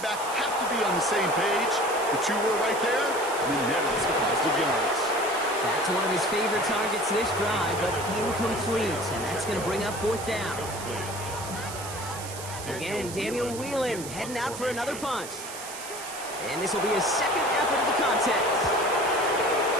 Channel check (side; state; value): right; noise; hiss, 11 dB below the sound